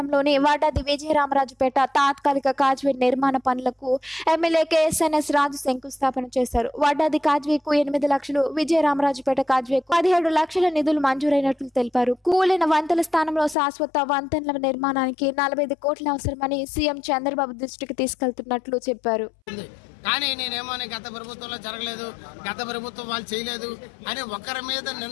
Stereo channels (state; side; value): drops out; right; at 13.6 s